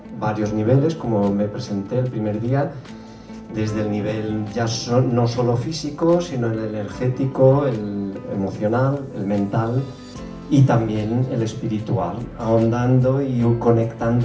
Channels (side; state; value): both; identical; correlation 1.00